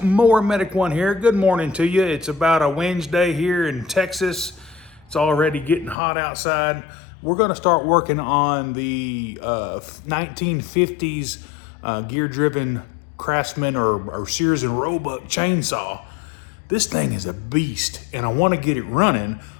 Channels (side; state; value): right; drops out; at 6.0 s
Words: Mower Medic One here. Good morning to you. It's about a Wednesday here in Texas. It's already getting hot outside. We're going to start working on the 1950s gear-driven Craftsman or Sears and Roebuck chainsaw. This thing is a beast, and I want to get it running,